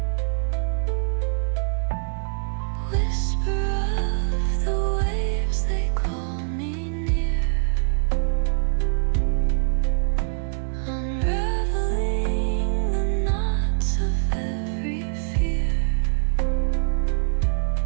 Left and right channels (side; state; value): left; silent; 63 dB below the other